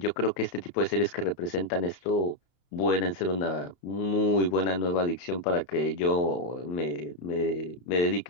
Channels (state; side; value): late; right; 31 ms